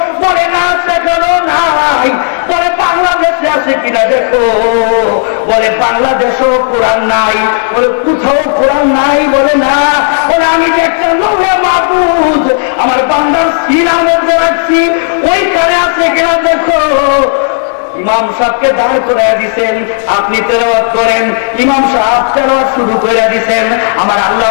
বলে না সেখানেও নাই। বলে বাংলাদেশে আছে কিনা দেখো, বলে বাংলাদেশেও কোরআন নাই। বলে কোথাও কোরআন নাই, বলে না। বলে আমি যে একটা লৌহে মাহফুজ আমার বান্দার সিনার মধ্যে রাখছি, ওইখানে আছে কিনা দেখো। ইমাম সাহেবকে দাঁড় করে দিছেন, আপনি তেলাওয়াত করেন। ইমাম সাহেব তেলাওয়াত শুরু করে দিছেন। আমার আল্লাহ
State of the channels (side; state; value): right; silent; digital silence